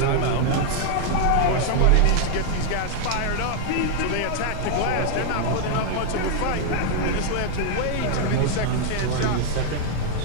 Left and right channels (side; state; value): both; different; correlation 0.00